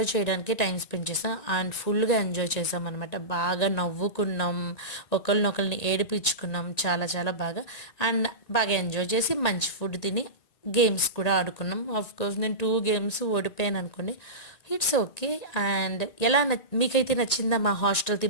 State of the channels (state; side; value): late; right; 1.9 ms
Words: చేయడానికే టైం స్పెండ్ చేసాం. అండ్ ఫుల్గా ఎంజాయ్ చేసాం అనమాట. బాగా నవ్వుకున్నాం, ఒకరినొకరిని ఏడిపించుకున్నాం, చాలా చాలా బాగా. అండ్ బాగా ఎంజాయ్ చేసి మంచి ఫుడ్ తిని గేమ్స్ కూడా ఆడుకున్నాం. కోర్స్ నేను 2 గేమ్స్ ఓడిపోయాను అనుకోండి, ఇట్స్ ఓకే. అండ్ ఎలా మీకైతే నచ్చిందా? మా హాస్టల్